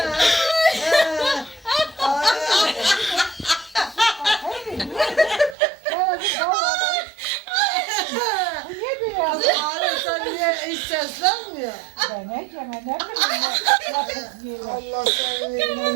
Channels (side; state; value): left; drops out; at 5.6 s